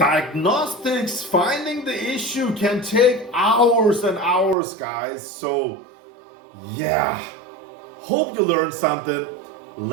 finding the issue, can take hours and hours, guys. So yeah, hope you learned something.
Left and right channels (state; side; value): drops out; left; at 4.5 s